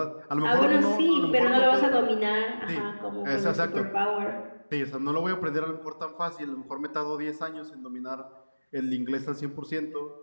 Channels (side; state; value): both; inverted; correlation -1.00